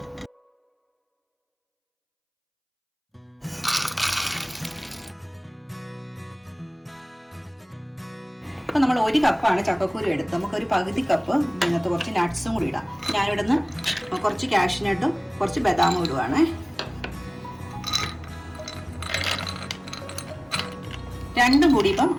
അപ്പൊ നമ്മൾ 1 കപ്പാണ് ചക്കക്കുരു എടുത്ത്, നമുക്കൊരു പകുതി കപ്പ് ഇതിനകത്ത് കുറച്ച് നട്ട്സും കൂടി ഇടാം. ഞാനിവിടെ നിന്ന് കുറച്ച് കാഷ്നട്ടും കുറച്ച് ബദാമും ഇടുവാണ്. 2 കൂടി ഇപ്പം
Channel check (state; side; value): identical; both; correlation 1.00